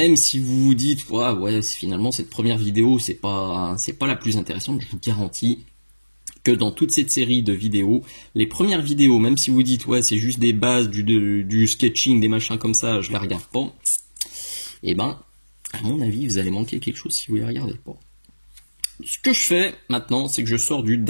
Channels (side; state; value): both; inverted; correlation -1.00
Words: si vous vous dites ouais finalement cette première vidéo c'est pas la plus intéressante, je vous garantis que dans toute cette série de vidéos, les premières vidéos, même si vous dites ouais c'est juste des bases, du sketching, des machins comme ça, je les regarde pas, et ben à mon avis vous allez manquer quelque chose si vous les regardez pas. Ce que je fais maintenant, c'est que je sors du